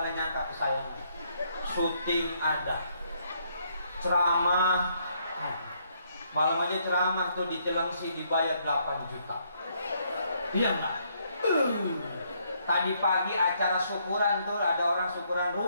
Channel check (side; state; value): both; inverted; correlation -0.71